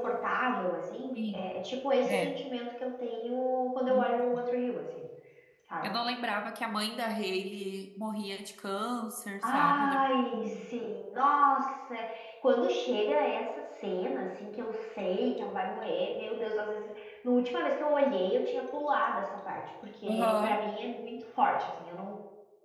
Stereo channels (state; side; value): identical; both; correlation 1.00